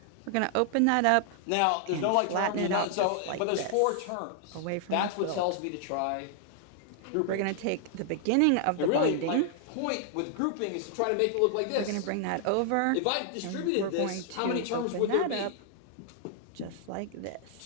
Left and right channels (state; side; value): different; both; correlation 0.00